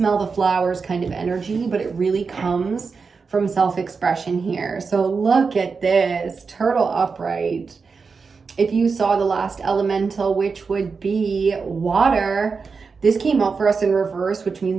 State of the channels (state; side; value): quieter; left; 5.0 dB